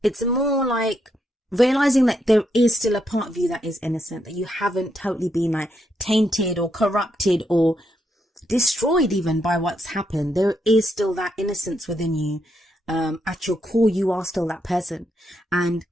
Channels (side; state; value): both; normal; correlation 0.79